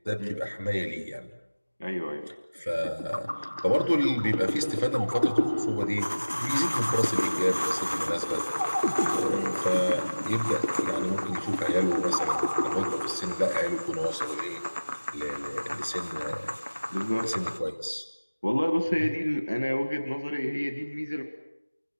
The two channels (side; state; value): both; inverted; correlation -1.00